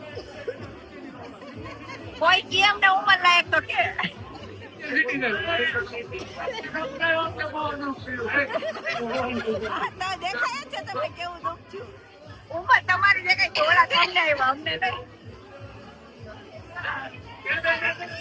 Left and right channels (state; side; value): identical; both; correlation 1.00